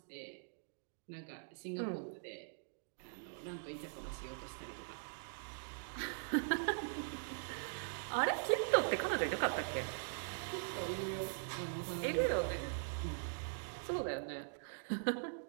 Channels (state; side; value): silent; left; digital silence